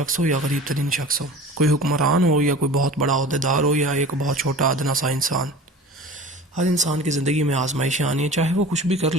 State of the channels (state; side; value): normal; both; correlation 0.40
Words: ہو یا غریب ترین شخص ہو، کوئی حکمران ہو یا کوئی بہت بڑا عہدیدار ہو یا ایک بہت چھوٹا ادنا سا انسان۔ ہر انسان کی زندگی میں آزمائشیں آنی ہیں، چاہے وہ کچھ بھی کر